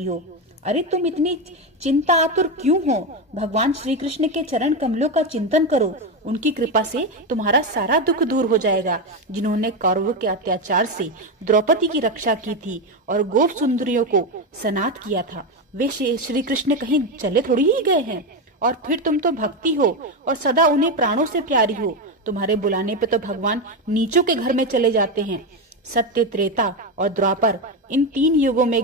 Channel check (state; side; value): normal; both; correlation 0.12